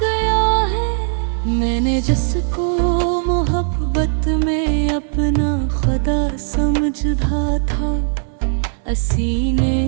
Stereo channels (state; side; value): silent; left; digital silence